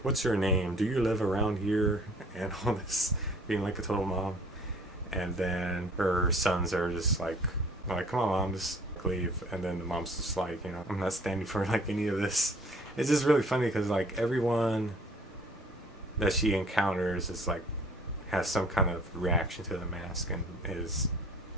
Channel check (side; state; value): both; normal; correlation 0.53